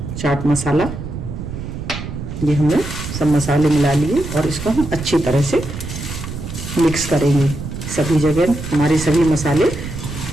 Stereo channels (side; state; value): right; noise; rumble, 8 dB below the sound